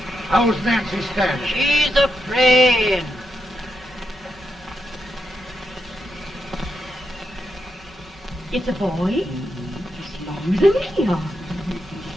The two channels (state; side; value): normal; both; correlation 0.84